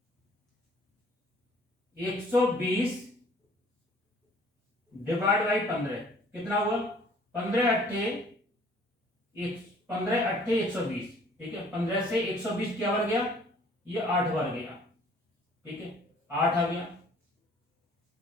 120 डिवाइड बाई 15 कितना हुआ, 15×8 = 120, ठीक है। 15 से 120 क्या बार गया, ये 8 बार गया, ठीक है। 8 आ गया,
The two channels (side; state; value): both; normal; correlation 0.56